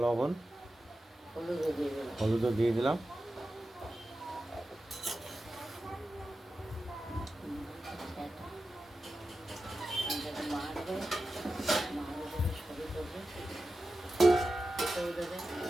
লবণ, হলুদও দিয়ে দিলাম।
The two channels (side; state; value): both; normal; correlation 0.93